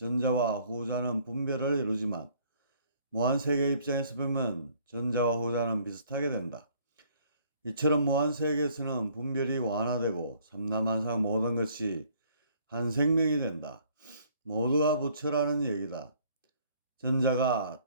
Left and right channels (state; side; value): inverted; both; correlation -0.60